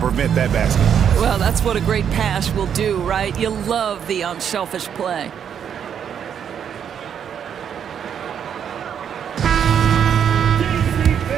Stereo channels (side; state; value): left; quieter; 8.3 dB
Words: that basket. Well, that's what a great pass will do, right? You love the unselfish play.